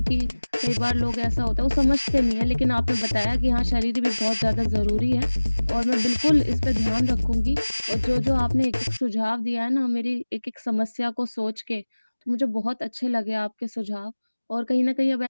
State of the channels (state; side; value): inverted; both; correlation -1.00